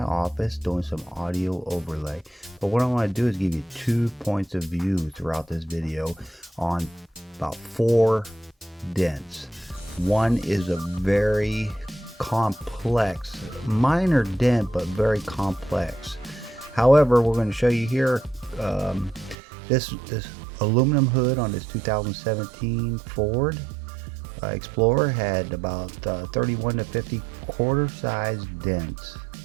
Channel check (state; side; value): drops out; left; at 19.4 s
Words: office doing some audio overlay, but what I want to do is give you 2 points of view throughout this video on about 4 dents. One is a very complex, minor dent, but very complex. However, we're going to show you here this aluminum hood on this 2017 Ford Explorer had about 31 to 50 quarter-sized dents